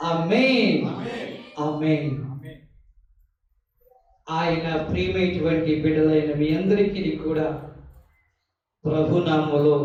ఆమేన్, ఆమేన్. ఆయన ప్రియమైనటువంటి బిడ్డలైన మీ అందరికీ కూడా ప్రభునామములో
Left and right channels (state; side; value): identical; both; correlation 1.00